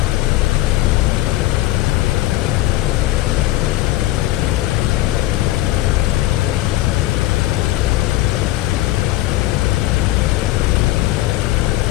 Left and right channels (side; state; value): right; quieter; 15.9 dB